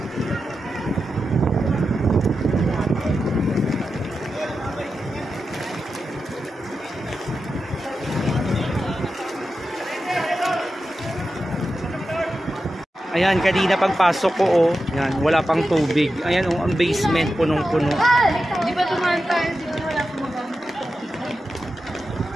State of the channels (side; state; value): both; normal; correlation 0.91